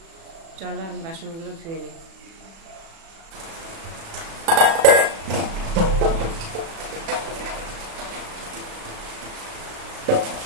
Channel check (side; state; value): left; late; 36 ms